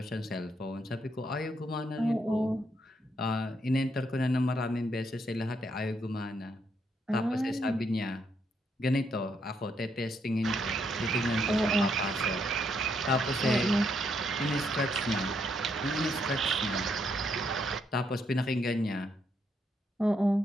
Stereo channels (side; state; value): both; normal; correlation 0.75